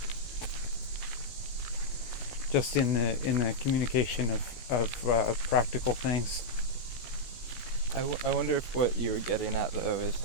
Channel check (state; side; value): late; right; 16 ms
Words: Just in the communication of practical things. I wonder if what you were getting at though is